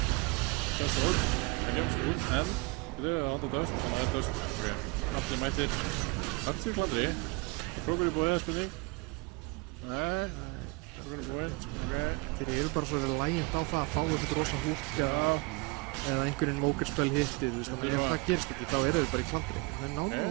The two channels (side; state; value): left; quieter; 26.9 dB